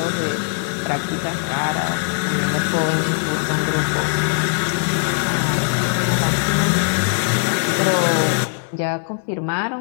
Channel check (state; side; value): silent; right; digital silence